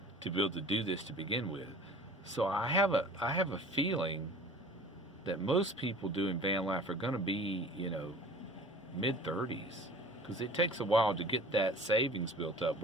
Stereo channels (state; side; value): normal; both; correlation 0.44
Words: to be able to do this to begin with. So I have a feeling that most people doing van life are going to be, you know, mid-30s, because it takes a while to get that savings built up